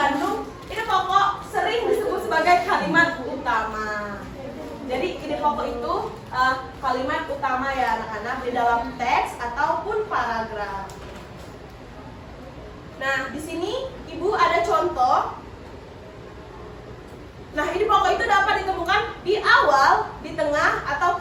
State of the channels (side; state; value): both; identical; correlation 1.00